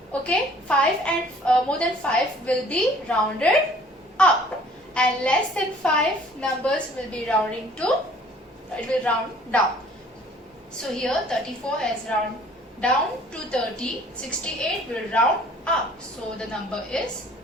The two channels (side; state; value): both; normal; correlation 0.54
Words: okay, 5 and more than 5 will be rounded up, and less than 5 numbers will be rounding to, it will round down. So here 34 has round down to 30, 68 will round up, so the number is